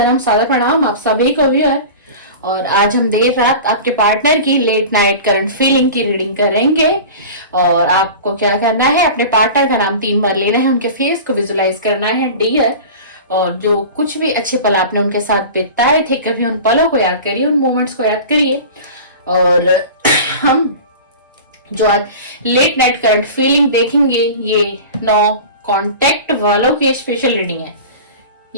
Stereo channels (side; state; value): both; inverted; correlation -0.35